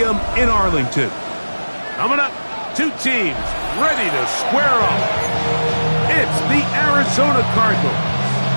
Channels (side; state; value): both; inverted; correlation -1.00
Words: in Arlington. Coming up, two teams ready to square off. It's the Arizona Cardinals